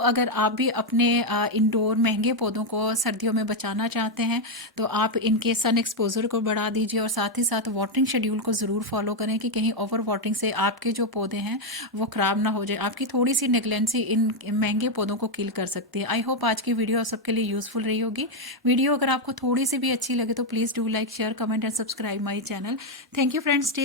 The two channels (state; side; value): normal; both; correlation 0.03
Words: अगर आप भी अपने इंडोर महंगे पौधों को सर्दियों में बचाना चाहते हैं तो आप इनके सन एक्सपोजर को बढ़ा दीजिए और साथ ही साथ वाटरिंग शेड्यूल को ज़रूर फॉलो करें कि कहीं ओवर वाटरिंग से आपके जो पौधे हैं वो ख़राब ना हो जाए। आपकी थोड़ी सी नेग्लेंसी इन महंगे पौधों को किल कर सकती है। आई होप आज की वीडियो सबके लिए यूज़फुल रही होगी। वीडियो अगर आपको थोड़ी सी भी अच्छी लगे तो please do like, share, comment and subscribe my channel. Thank you friends,